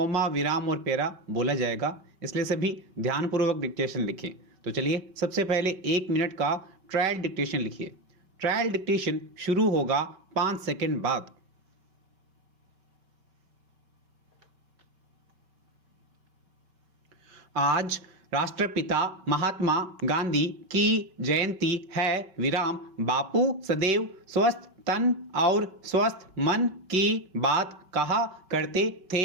विराम और पैरा बोला जाएगा, इसलिए सभी ध्यानपूर्वक डिक्टेशन लिखें। तो चलिए सबसे पहले 1 मिनट का ट्रायल डिक्टेशन लिखिए। ट्रायल डिक्टेशन शुरू होगा 5 सेकंड बाद। आज राष्ट्रपिता महात्मा गांधी की जयंती है। विराम। बापू सदैव स्वस्थ तन और स्वस्थ मन की बात कहा करते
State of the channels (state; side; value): late; left; 5.3 ms